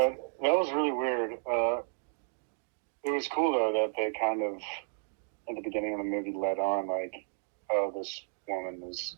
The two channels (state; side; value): silent; left; digital silence